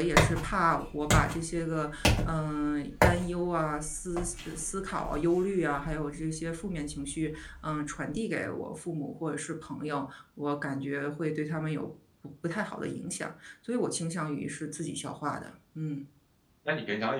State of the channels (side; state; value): both; identical; correlation 1.00